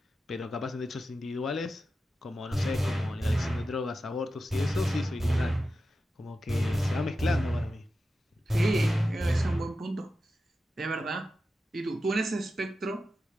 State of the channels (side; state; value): both; normal; correlation 0.92